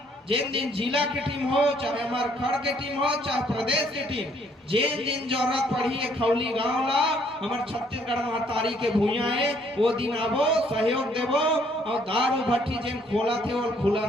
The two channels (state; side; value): normal; both; correlation 0.65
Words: जिन दिन जिला की टीम हो, चाहे हमारे खड़ के टीम हो, चाहे प्रदेश की टीम, जिन दिन जरूरत पड़ी है खौली गांव ला हमारे छत्तीसगढ़ महतारी के भूया है, वो दिन आबो, सहयोग देबो। और दारू भट्टी जिन खोला थे वो खुला